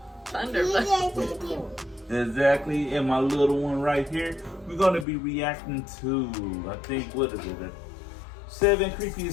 Thunder Buddy. Exactly, and my little one right here. We're gonna be reacting to, I think, what is it? 7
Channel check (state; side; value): drops out; right; at 5.1 s